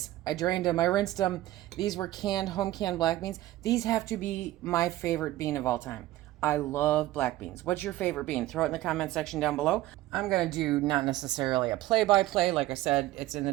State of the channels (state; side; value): quieter; left; 15.8 dB